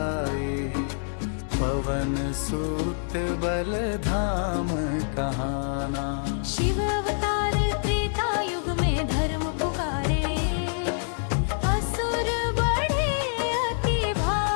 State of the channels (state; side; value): silent; right; 61 dB below the other